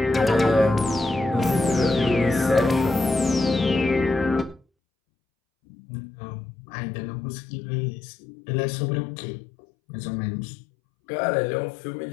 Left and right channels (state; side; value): drops out; right; at 4.6 s